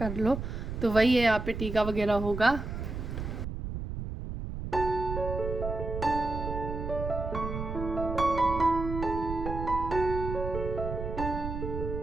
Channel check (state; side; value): noise; right; rumble, 5 dB below the sound